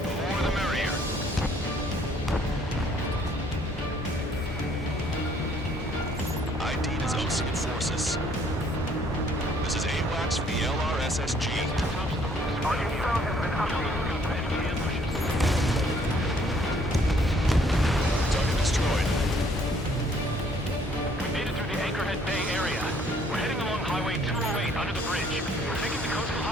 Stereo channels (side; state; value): both; normal; correlation 0.63